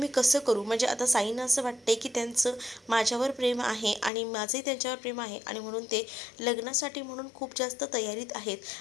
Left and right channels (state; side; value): drops out; right; at 4.1 s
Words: कसं करू? म्हणजे आता साईंना असं वाटते की त्यांचं माझ्यावर प्रेम आहे आणि माझंही त्यांच्यावर प्रेम आहे, आणि म्हणून ते लग्नासाठी म्हणून खूप जास्त तयारीत आहेत.